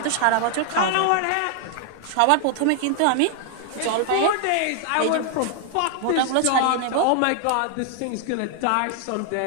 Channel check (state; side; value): different; both; correlation 0.00